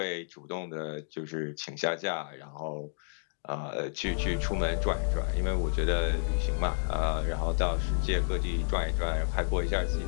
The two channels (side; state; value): right; silent; digital silence